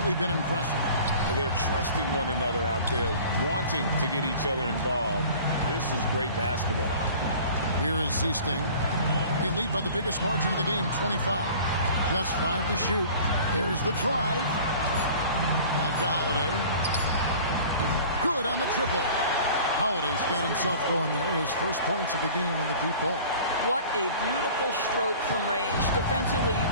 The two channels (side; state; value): both; inverted; correlation -0.44